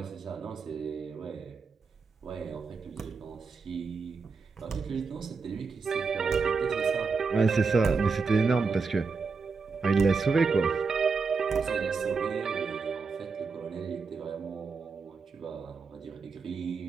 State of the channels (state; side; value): quieter; left; 4.8 dB